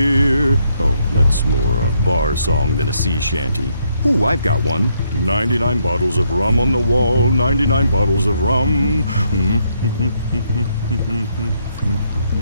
Oh, that's more a bar song than a sea shanty. Ooh, I've got one. 99 bottles of rum on the wall, 99 bottles of rum.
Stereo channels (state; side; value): inverted; both; correlation -0.74